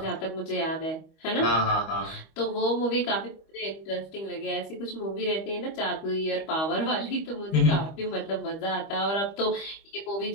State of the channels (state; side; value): late; right; 25 ms